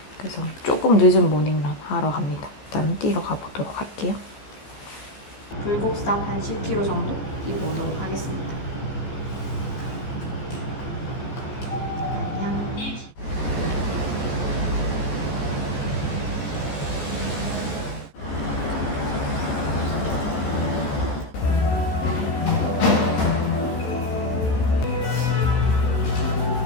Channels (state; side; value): late; right; 14 ms